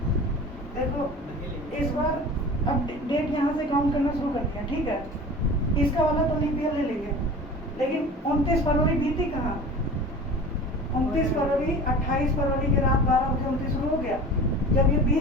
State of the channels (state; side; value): normal; both; correlation 0.38